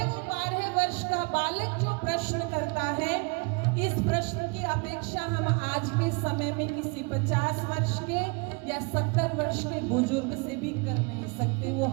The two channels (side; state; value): left; quieter; 31.2 dB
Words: वो 12 वर्ष का बालक जो प्रश्न करता है, इस प्रश्न की अपेक्षा हम आज के समय में किसी 50 वर्ष के या 70 वर्ष के बुजुर्ग से भी कर नहीं सकते। वो